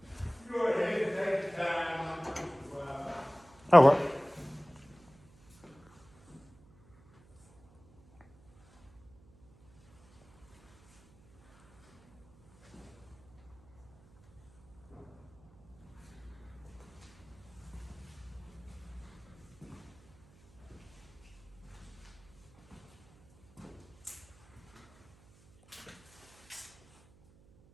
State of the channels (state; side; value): noise; right; hum, 28 dB below the sound